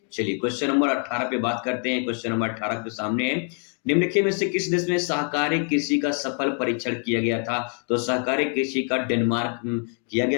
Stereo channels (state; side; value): quieter; right; 39.4 dB